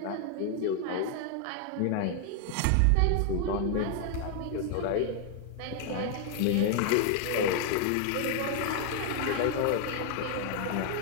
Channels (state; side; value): different; both; correlation 0.00